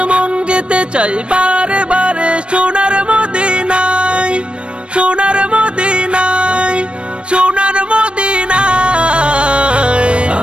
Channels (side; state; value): left; late; 0.058 ms